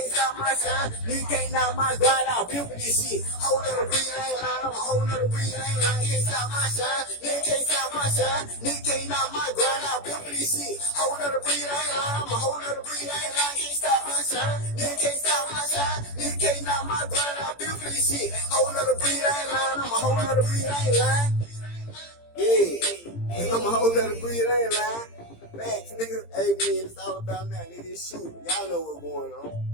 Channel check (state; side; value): late; right; 17 ms